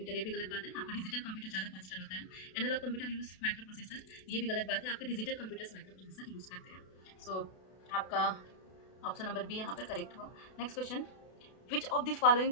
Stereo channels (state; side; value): late; right; 32 ms